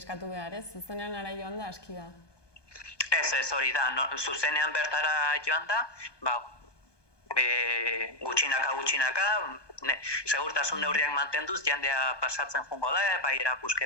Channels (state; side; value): late; right; 1.2 ms